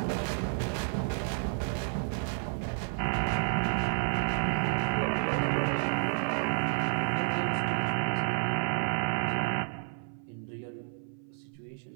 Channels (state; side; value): silent; left; 57 dB below the other